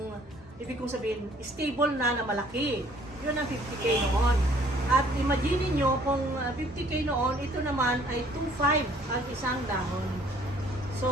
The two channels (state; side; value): normal; both; correlation 0.58